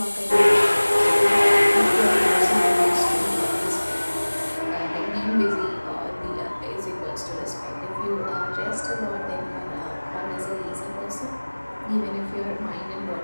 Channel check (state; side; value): inverted; both; correlation -1.00